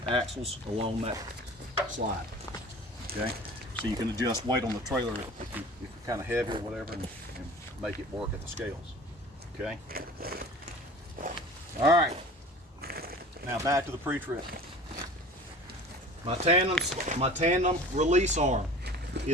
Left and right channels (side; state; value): both; normal; correlation 0.42